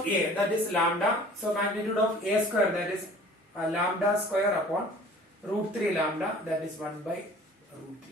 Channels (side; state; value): both; normal; correlation 0.48